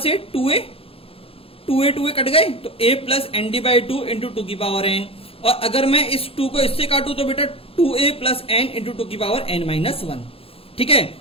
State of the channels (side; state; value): right; late; 0.27 ms